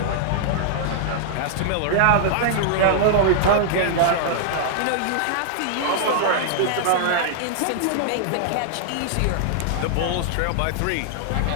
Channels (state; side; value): different; both; correlation -0.01